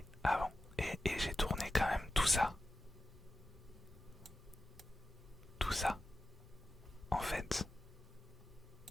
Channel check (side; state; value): both; normal; correlation 0.92